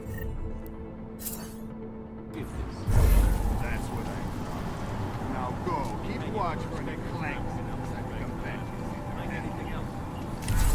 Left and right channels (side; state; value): both; identical; correlation 1.00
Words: Is this? That's what I thought. Now go. Keep watch for any clanks outside the convention. Anything else?